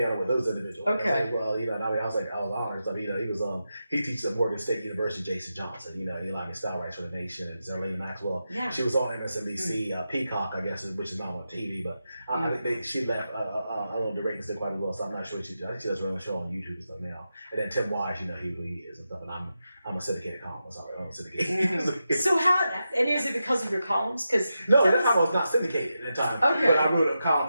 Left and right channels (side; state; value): both; inverted; correlation -0.89